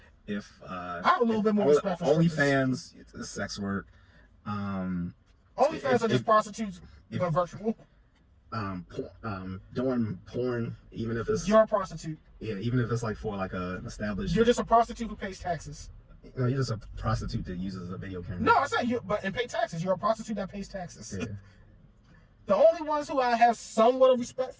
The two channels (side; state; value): both; identical; correlation 1.00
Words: If I have a little bit more respect for OnlyFans, it's sex work. OnlyFans are just prostitutes, but virtual. Doing porn, even if it's you're a prostitute. Yeah, even if it's like for like an established. You're just a prostitute who pays taxes. No, you're just a prostitute that uses a video camera. No, I said and pay taxes. You're a prostitute that pays taxes. Yeah. The only ones who I have somewhat of respect